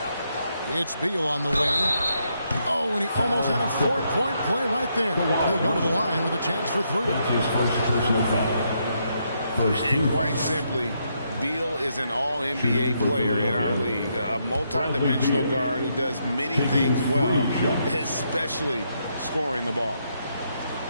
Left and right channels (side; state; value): both; inverted; correlation -0.78